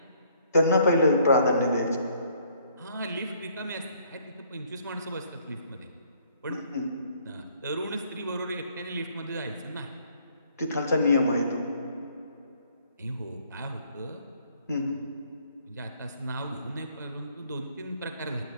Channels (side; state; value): both; inverted; correlation -0.63